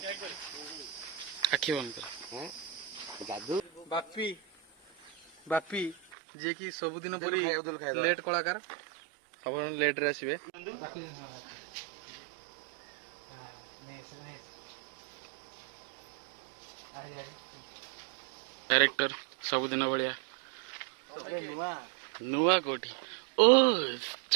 आखि बंद कर जादू बापी बापी जे कि सबुदिन परी लेट कलाकार सब लेट रे आसीबे डायरेक्टर सबुदिन भलिया नुआ कोठी ओ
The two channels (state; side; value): drops out; left; at 6.0 s